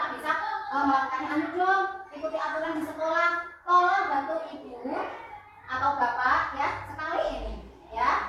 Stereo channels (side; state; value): both; identical; correlation 1.00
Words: bisa melakukan anu dong, ikuti aturan di sekolah, tolong bantu ibu atau bapak ya sekali ini, ya